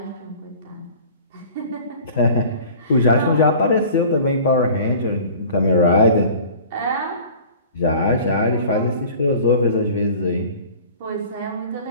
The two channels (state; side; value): inverted; both; correlation -0.44